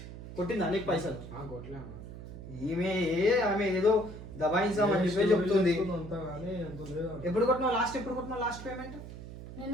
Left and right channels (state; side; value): noise; right; hum, 12 dB below the sound